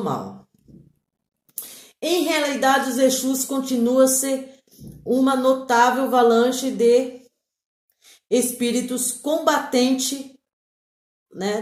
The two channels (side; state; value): both; identical; correlation 1.00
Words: mal. Em realidade, os Exus continuam a ser uma notável avalanche de espíritos combatentes, né,